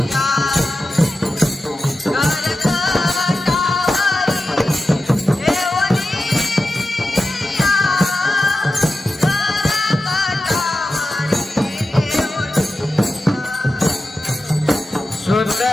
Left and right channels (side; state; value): both; normal; correlation 0.93